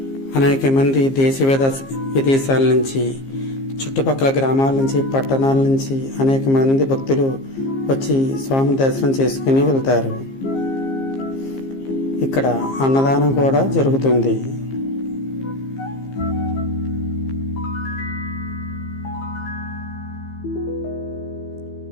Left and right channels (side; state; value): right; late; 15 ms